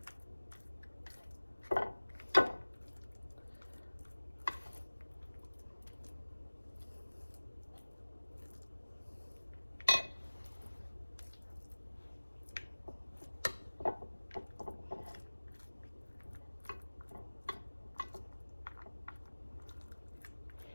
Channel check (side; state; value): both; inverted; correlation -1.00